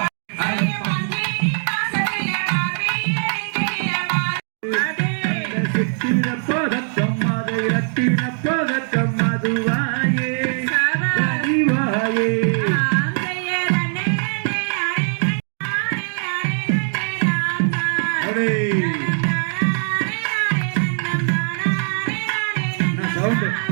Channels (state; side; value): silent; left; digital silence